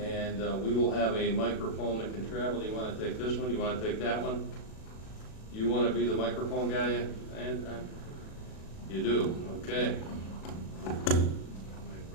we will have a microphone that can travel. Do you want to take this one? Do you want to take that one? You want to be the microphone guy? And you do, okay. I might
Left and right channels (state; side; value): late; right; 37 ms